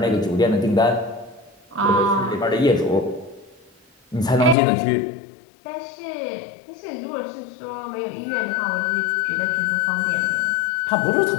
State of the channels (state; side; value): drops out; right; at 4.5 s